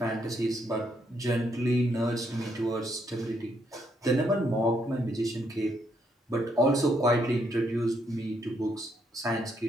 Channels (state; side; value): normal; both; correlation 0.74